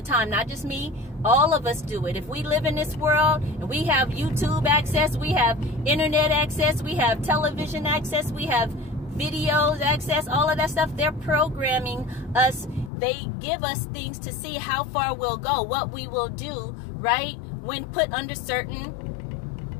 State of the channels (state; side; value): drops out; right; at 12.9 s